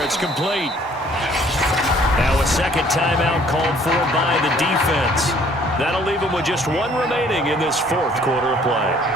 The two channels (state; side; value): normal; both; correlation 0.58